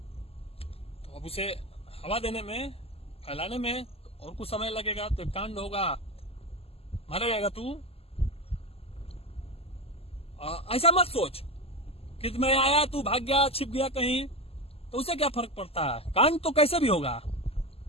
अब उसे हवा देने में, फैलाने में और कुछ समय लगेगा। तो कांड होगा, मारा जाएगा तू। ऐसा मत सोच कि मैं आया तू भाग गया, छिप गया कहीं, तो उसे क्या फर्क पड़ता है? कांड तो कैसे भी होगा।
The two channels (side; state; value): right; late; 0.29 ms